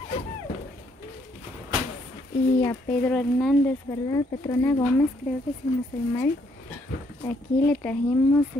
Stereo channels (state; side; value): normal; both; correlation 0.70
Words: y a Pedro Hernández, ¿verdad? Petrona Gómez, creo que si no estoy mal. Aquí le trajimos